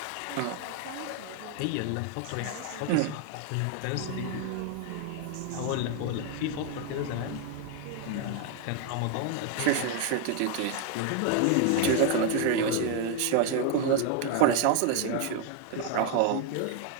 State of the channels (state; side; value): different; both; correlation 0.01